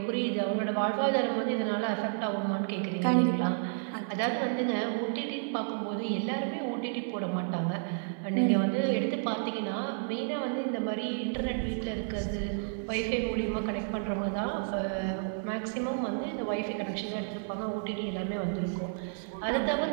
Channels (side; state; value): left; silent; digital silence